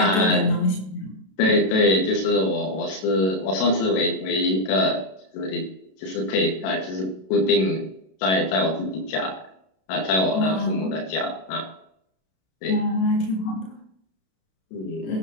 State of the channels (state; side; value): late; right; 32 ms